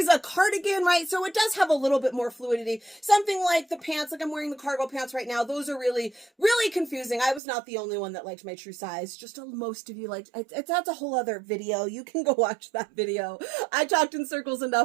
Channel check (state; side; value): drops out; left; at 7.4 s